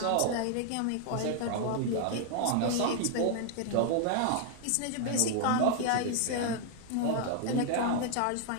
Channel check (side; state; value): both; different; correlation 0.00